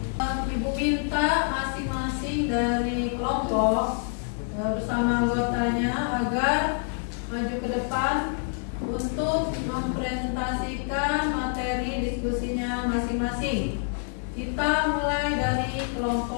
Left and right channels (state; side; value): silent; right; 57 dB below the other